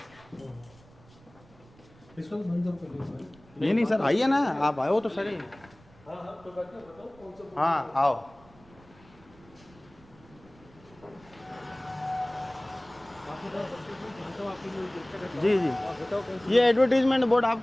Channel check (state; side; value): noise; right; rumble, 25 dB below the sound